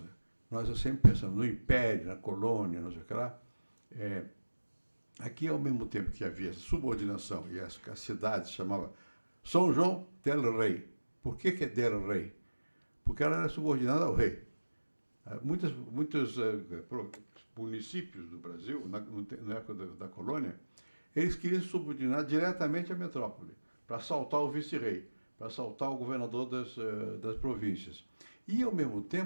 nós sempre pensamos no império, na colônia, não sei o que lá. Aqui, ao mesmo tempo que havia essa subordinação e as cidades chamavam São João del Rei. Por que é del Rei? Porque ela era subordinada ao rei. Muitos municípios do Brasil, na época da colônia, eles queriam se subordinar diretamente à metrópole, para assaltar o vice-rei, para assaltar o governador das províncias. E, ao mesmo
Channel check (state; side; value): inverted; both; correlation -1.00